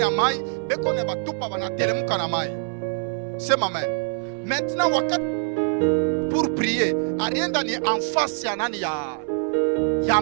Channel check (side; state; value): left; silent; 62 dB below the other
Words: mai, beko ne batupa banatelemuka na mai. Sema amen. Maintenant wakati pour prier, arienda ni en face ya nani ya